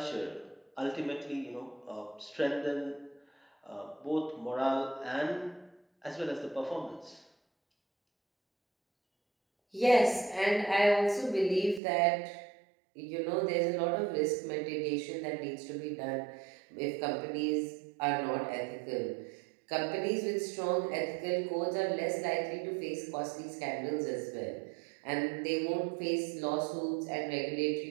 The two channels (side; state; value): left; drops out; at 11.8 s